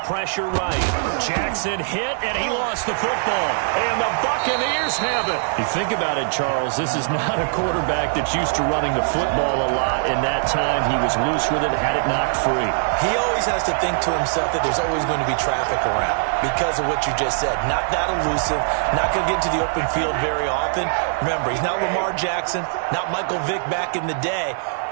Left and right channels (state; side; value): silent; left; digital silence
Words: pressure right. Jackson hit, and he lost the football. And the Buccaneers have it. You think about it, Charles, this is not a quarterback that's used to running the football a lot. In that time, he was loose with it, had it knocked free. He always has to think to himself that there's always going to be traffic around because of what you just said. Not that elusive, not going to get into the open field very often. Remember, he's not Lamar Jackson, not Michael Vick back in the day.